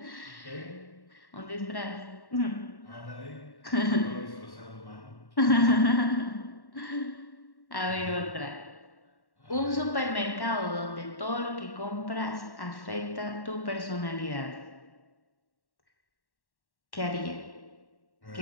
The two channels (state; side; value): late; right; 1.1 ms